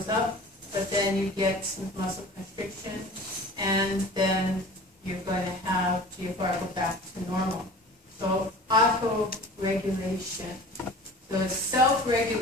up, but then you get smooth muscle constriction, and then you're going to have GFR go back to normal. So auto-regulation. So it's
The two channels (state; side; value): normal; both; correlation 0.41